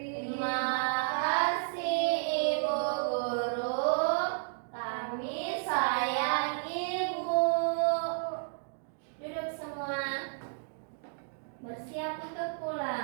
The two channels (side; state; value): left; silent; digital silence